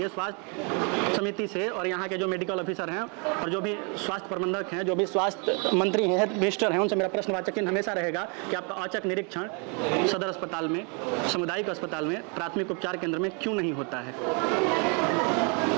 स्वास्थ्य समिति से और यहाँ के जो मेडिकल ऑफिसर हैं और जो भी स्वास्थ्य प्रबंधक हैं, जो भी स्वास्थ्य मंत्री हैं, हेल्थ मिनिस्टर हैं, उनसे मेरा प्रश्नवाचक चिन्ह हमेशा रहेगा कि आपका औचक निरीक्षण सदर अस्पताल में, सामुदायिक अस्पताल में, प्राथमिक उपचार केंद्र में क्यों नहीं होता है।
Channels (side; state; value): left; quieter; 35.1 dB